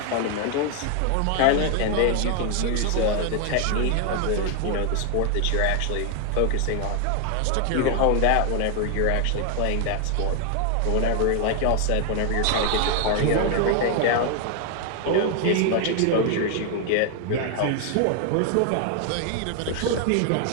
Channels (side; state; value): both; different; correlation 0.00